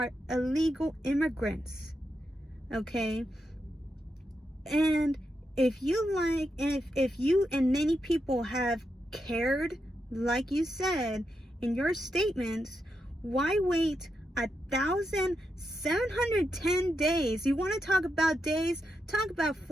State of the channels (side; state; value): both; normal; correlation 0.85